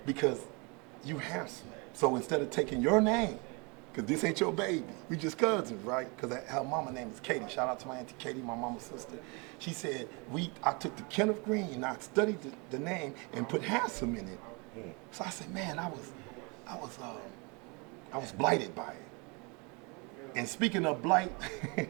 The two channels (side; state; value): left; quieter; 30.6 dB